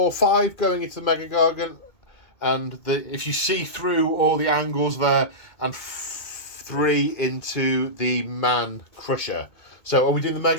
going into the Mega Gargant. And if you see through all the angles there, and 3 into the Man Crusher. So are we doing the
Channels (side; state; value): right; late; 2.2 ms